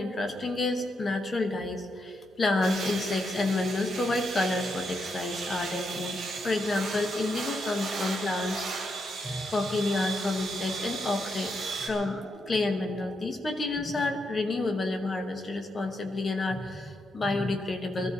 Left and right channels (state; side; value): normal; both; correlation 0.81